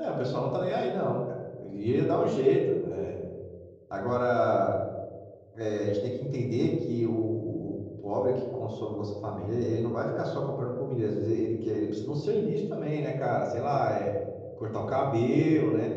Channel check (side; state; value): both; identical; correlation 1.00